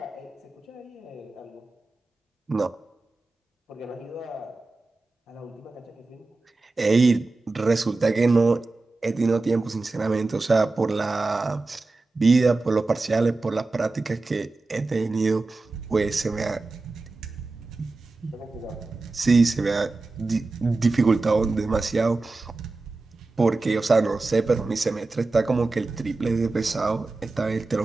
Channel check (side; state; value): left; quieter; 3.4 dB